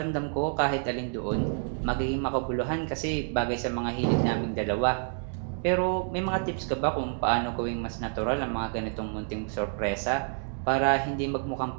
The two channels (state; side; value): silent; left; 55 dB below the other